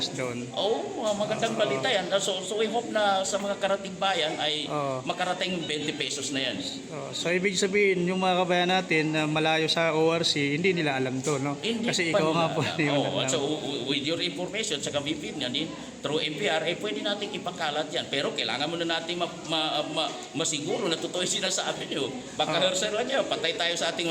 doon. Magandang balita yan. So we hope na sa mga karating bayan ay makarating yung 20 pesos na yan. So ibig sabihin, yung mga kabayan natin na malayo sa ORC, hindi nila alam to, no? Hindi Kasi pa ikaw nila nga po. alam. So with your information sa kabipin yan, through MPR, pwede natin ipakalat yan. Pero kailangan muna natin masiguro na totoo yung sinasabi nyo. Baka hearsay lang yan, patay tayo sa ating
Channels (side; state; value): both; identical; correlation 1.00